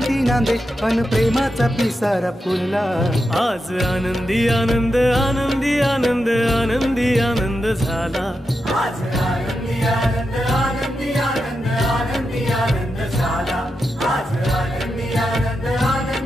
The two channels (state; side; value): normal; both; correlation 0.88